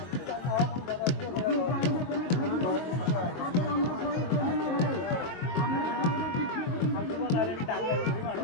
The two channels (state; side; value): late; right; 22 ms